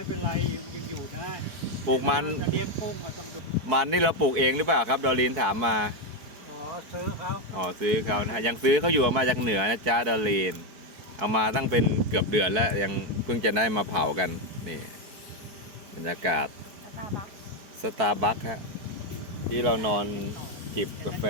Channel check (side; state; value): left; late; 4.6 ms